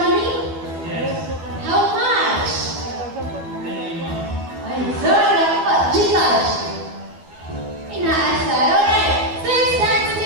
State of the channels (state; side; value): late; left; 12 ms